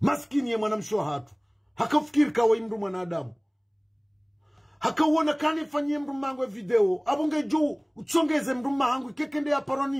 Maskini ya mwanamsho hatu. Hakafikiri kawa imru mwanadamu. Hakauona kanifanyie mru mangu video. Abunge juu utsongeze mru mangu kekende ya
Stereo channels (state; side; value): identical; both; correlation 1.00